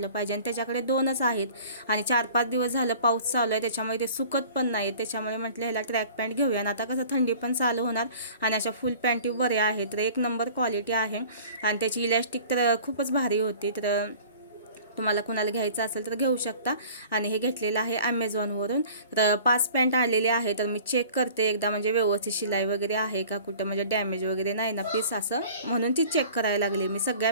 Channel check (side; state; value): both; inverted; correlation -0.46